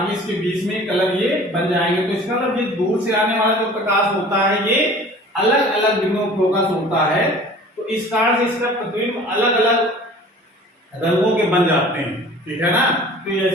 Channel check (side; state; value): both; normal; correlation 0.45